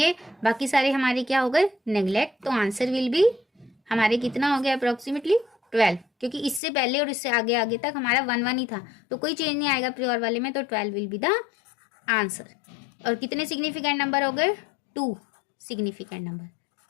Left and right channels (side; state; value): right; drops out; at 6.6 s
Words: बाकी सारे हमारे क्या हो गए नेग्लेक्ट, तो आंसर विल बी हमारे कितना हो गया अप्रॉक्सीमेटली 12, क्योंकि इससे पहले और इससे आगे आगे तक हमारा 1 1 ही था, तो कोई चेंज नहीं आएगा प्योर वाले में, तो 12 विल बी द आंसर। और कितने सिग्निफिकेंट नंबर हो गए 2, सिग्निफिकेंट नंबर,